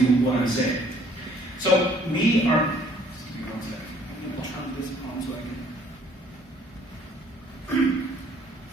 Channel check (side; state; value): both; normal; correlation 0.60